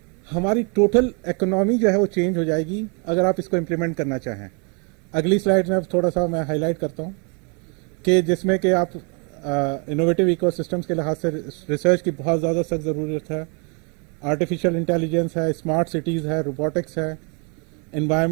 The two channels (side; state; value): left; quieter; 35.2 dB